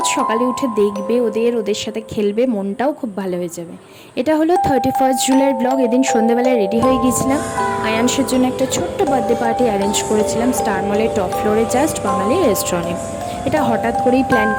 সকালে উঠে দেখবে ওদের সাথে খেলবে, মনটাও খুব ভালো হয়ে যাবে। এটা হলো 31 জুলাইয়ের ব্লগ। এদিন সন্ধ্যেবেলায় রেডি হয়ে গিয়েছিলাম, আয়ানসের জন্য একটা ছোট্ট বার্থডে পার্টি অ্যারেঞ্জ করেছিলাম স্টার মলের টপ ফ্লোরে জাস্ট বাঙালি রেস্টুরেন্টে। এটা হঠাৎ করেই প্ল্যান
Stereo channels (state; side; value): identical; both; correlation 1.00